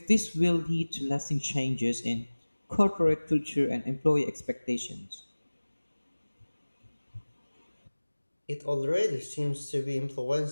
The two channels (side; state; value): both; inverted; correlation -1.00